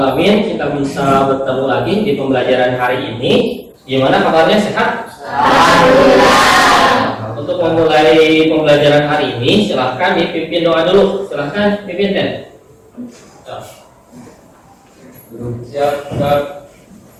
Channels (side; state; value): both; identical; correlation 1.00